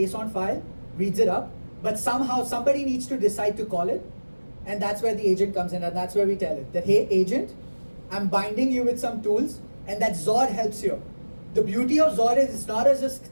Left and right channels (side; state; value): both; inverted; correlation -1.00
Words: file, reads it up, but somehow somebody needs to decide to call it, and that's where the agent comes in, and that's where we tell it that, hey agent, I'm binding you with some tools, and that Zod helps you. The beauty of Zod is